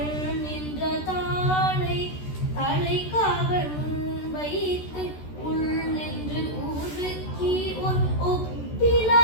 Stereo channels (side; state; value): right; late; 13 ms